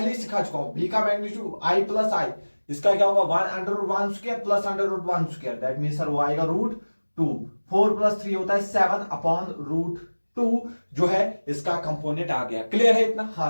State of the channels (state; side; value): inverted; both; correlation -1.00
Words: ही सिखा चुका हूं, बी का मैग्नीट्यूड आई प्लस आई, इसका क्या होगा 1 under root 1 square plus under root 1 square, that mean sir वो आएगा रूट 2। 4 प्लस 3 होता है 7 अपॉन रूट 2 जो है इसका कंपोनेंट आ गया। क्लियर है इतना?